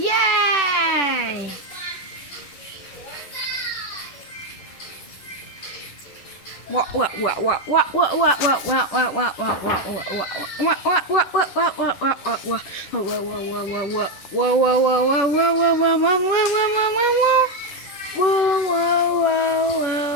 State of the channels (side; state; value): right; late; 10 ms